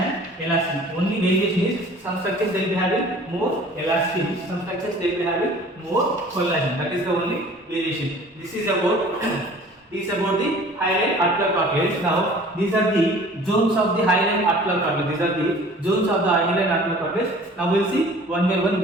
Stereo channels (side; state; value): both; normal; correlation 0.48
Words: elastin. Only variation is some structures they will be having more elastin, some structures they will be having more collagen. That is the only variation. This is about the hyaline articular cartilage. Now these are the zones of the hyaline articular cartilage. These are the zones of the hyaline articular cartilage. Now we will see one by one